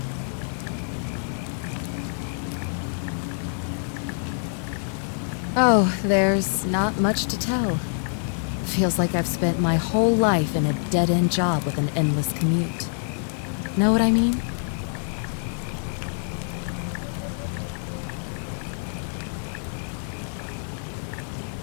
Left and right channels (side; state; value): right; silent; digital silence